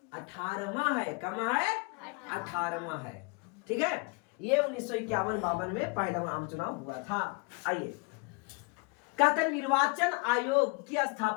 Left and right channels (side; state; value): right; quieter; 30.7 dB